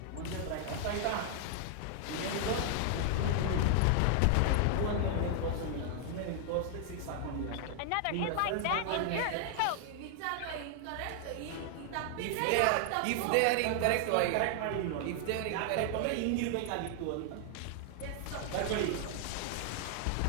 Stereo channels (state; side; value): different; both; correlation 0.00